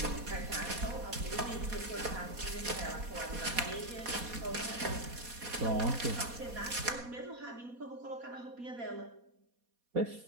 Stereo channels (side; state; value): left; late; 4.2 ms